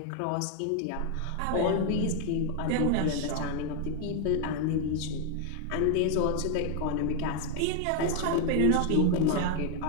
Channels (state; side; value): different; both; correlation 0.01